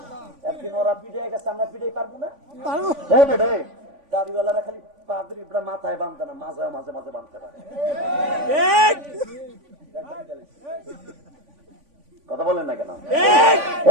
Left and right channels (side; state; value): left; late; 3.5 ms